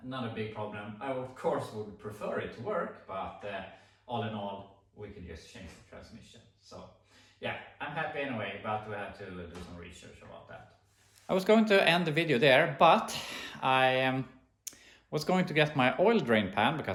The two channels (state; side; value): identical; both; correlation 1.00